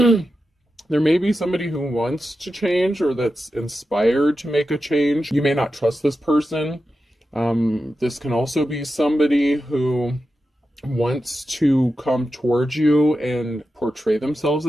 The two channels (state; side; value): normal; both; correlation 0.91